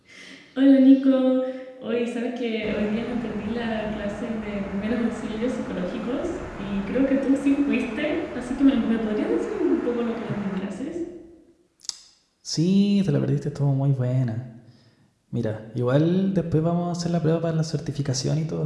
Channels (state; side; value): identical; both; correlation 1.00